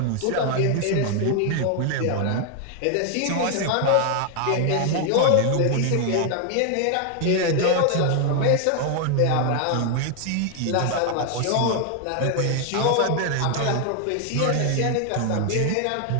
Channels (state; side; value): different; both; correlation 0.00